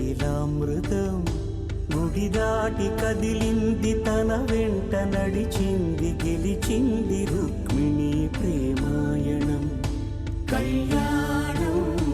గుడి దాటి కదిలింది తన వెంట నడిచింది గెలిచింది రుక్మిణి ప్రేమాయణం కళ్యాణం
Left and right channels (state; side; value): identical; both; correlation 1.00